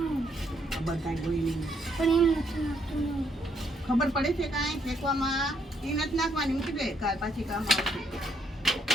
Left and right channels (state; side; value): normal; both; correlation 0.72